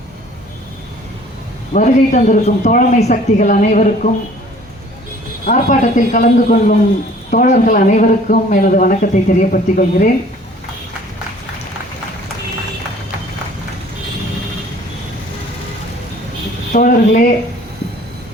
வருகை தந்திருக்கும் தோழமை சக்திகள் அனைவருக்கும் ஆர்ப்பாட்டத்தில் கலந்து கொள்ளும் தோழர்கள் அனைவருக்கும் எனது வணக்கத்தை தெரியப்படுத்திக் கொள்கிறேன். தோழர்களே,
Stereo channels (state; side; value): normal; both; correlation 0.53